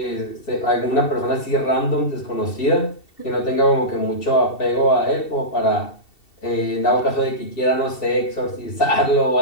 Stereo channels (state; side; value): late; right; 2.7 ms